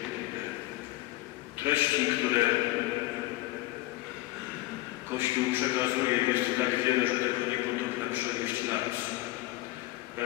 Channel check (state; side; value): quieter; right; 18.1 dB